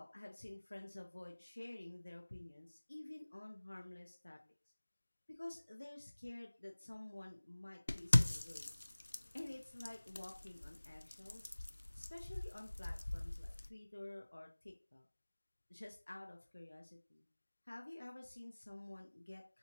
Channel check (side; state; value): both; inverted; correlation -1.00